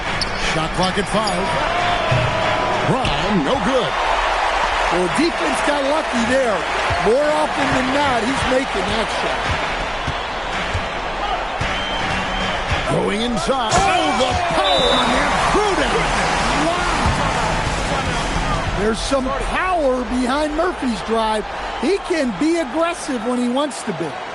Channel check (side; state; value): both; identical; correlation 1.00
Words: Shot clock at 5. Brown, no good. Well, defense got lucky there. More often than not, he's making that shot. Going inside. Oh, the power on that throw down. There's some power behind Murphy's drive. He can be aggressive when he wants to be.